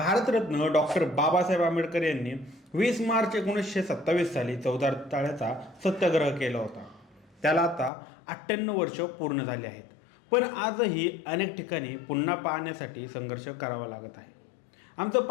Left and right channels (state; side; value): drops out; right; at 7.9 s